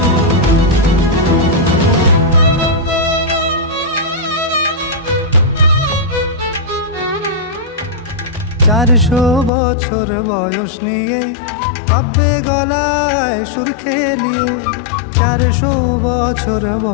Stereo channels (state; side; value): drops out; right; at 9.5 s